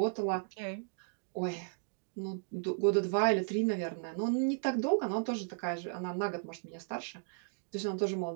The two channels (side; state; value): left; silent; digital silence